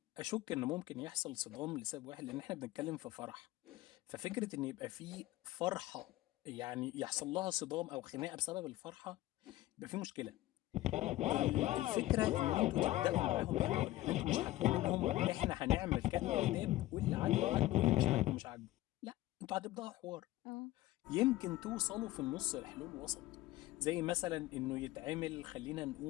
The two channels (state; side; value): quieter; right; 16.3 dB